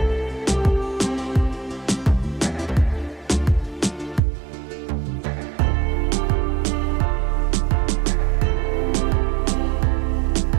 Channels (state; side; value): drops out; left; at 4.2 s